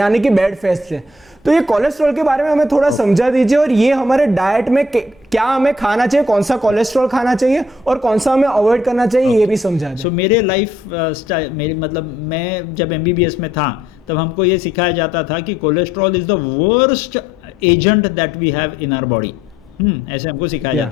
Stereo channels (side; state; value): both; normal; correlation 0.67